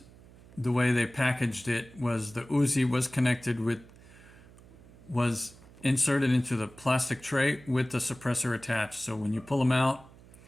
the way they packaged it was the Uzi was inserted into the plastic tray with the suppressor attached. So when you pull them out,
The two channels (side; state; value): right; noise; hum, 22 dB below the sound